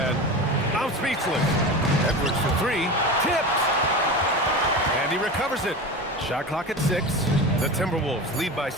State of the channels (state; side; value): normal; both; correlation 0.28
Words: I'm speechless. Edwards for 3. Tipped. And he recovers it. Shot clock at 6. The Timberwolves lead by